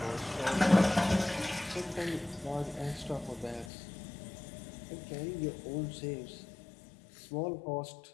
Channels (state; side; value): drops out; right; at 3.7 s